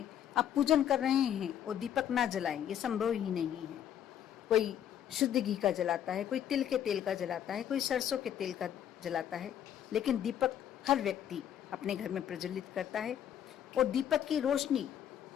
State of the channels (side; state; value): right; quieter; 10.0 dB